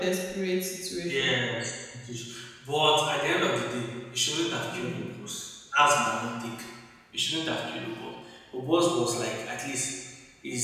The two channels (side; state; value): both; identical; correlation 1.00